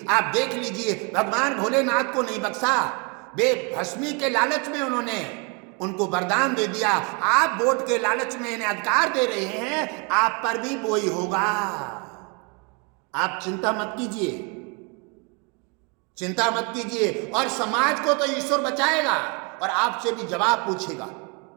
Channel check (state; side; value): quieter; left; 33.1 dB